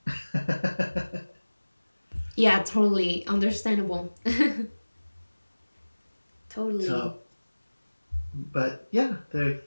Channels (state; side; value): inverted; both; correlation -1.00